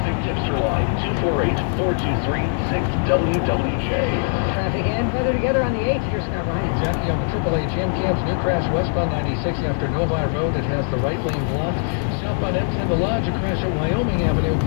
Tipster Line, 248-423-6WWJ. Traffic and weather together on the 8th. Here's Scott Ryan. Jackie on the AAA Jam Camps, new crash westbound 96 after Novi Road. It has the right lane blocked. Southbound M10 the Lodge, a crash at Wyoming Avenue.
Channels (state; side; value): silent; right; 62 dB below the other